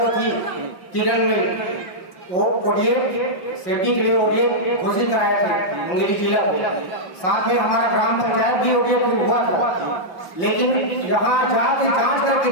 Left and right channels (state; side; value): late; right; 5.6 ms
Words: थी किरण में, वो ओडीए सेफ्टी के लिए ओडीए घोषित कराए थे मुंगेली जिला को। साथ में हमारा ग्राम पंचायत भी ओडीए हुआ था, लेकिन यहाँ जाके जांच करके